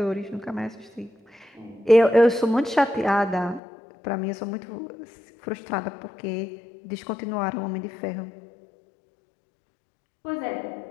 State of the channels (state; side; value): drops out; right; at 3.6 s